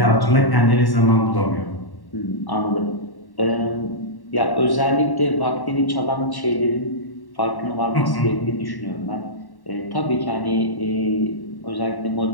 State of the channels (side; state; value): right; late; 1.1 ms